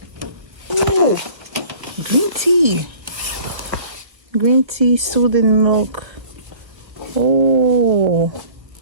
Ooh, green tea. Green tea, soothing milk. Oh,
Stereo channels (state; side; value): late; left; 1.4 ms